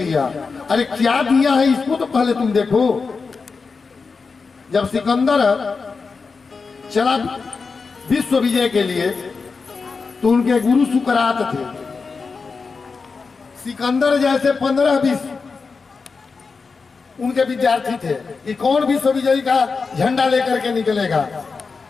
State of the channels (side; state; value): right; quieter; 4.7 dB